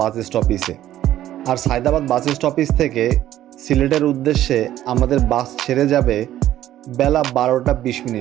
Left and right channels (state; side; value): quieter; left; 12.9 dB